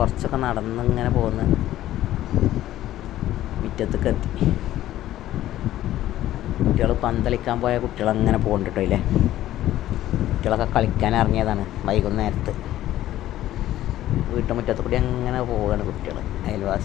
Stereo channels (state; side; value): quieter; right; 13.7 dB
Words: നടന്നിങ്ങനെ പോന്ന് മുറ്റത്തേക്ക് എത്തി. കുട്ടികൾ പന്തളിക്കാൻ പോയ കുട്ടികളങ്ങനെ പോകുന്നുണ്ട് കേട്ടോ. ഇല്ലേ, കുട്ടികളൊക്കെ കളിക്കാൻ ഇറങ്ങിയതാണ് വൈകുന്നേരത്ത്. വീട്ടുമുറ്റത്ത് കൂടി അങ്ങനെ പോവുകയാണ് കുട്ടികൾ,